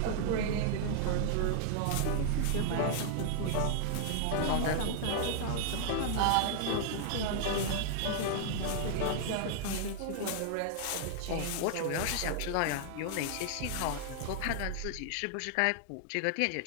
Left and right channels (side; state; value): both; different; correlation 0.00